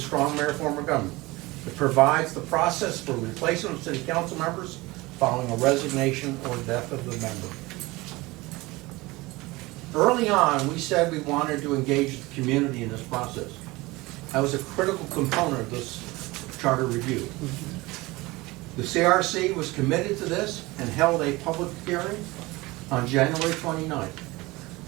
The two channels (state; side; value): quieter; left; 21.6 dB